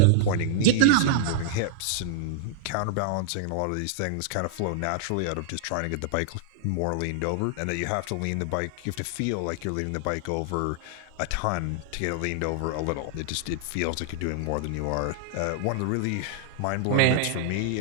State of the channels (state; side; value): different; both; correlation -0.01